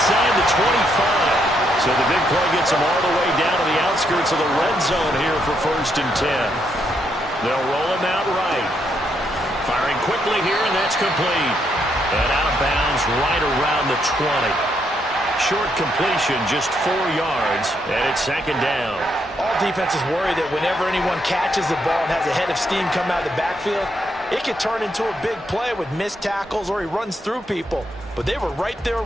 the 25. So the big play gets him all the way down to the outskirts of the red zone here for 1st and 10. They'll roll him out right. Firing quickly here, and that's complete. And out of bounds right around the 20. Short completion, just 4 yards, and it's 2nd down. All defenses worry that whenever anyone catches the ball and has a head of steam come out of the backfield, it could turn into a big play with missed tackles or he runs through people. But they were right there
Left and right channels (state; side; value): normal; both; correlation 0.77